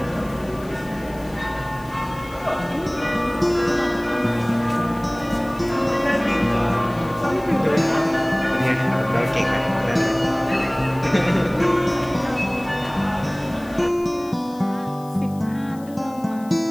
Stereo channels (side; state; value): left; noise; hiss, 24 dB below the sound